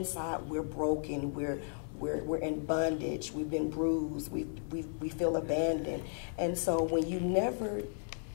we're broken. We're in bondage. We've been bruised. We feel abandoned. And so when you never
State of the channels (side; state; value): right; silent; digital silence